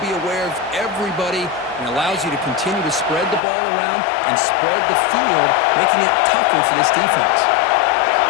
be aware of everybody, and allows you to continue to spread the ball around and spread the field, making it tougher for this defense.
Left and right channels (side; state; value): right; drops out; at 3.4 s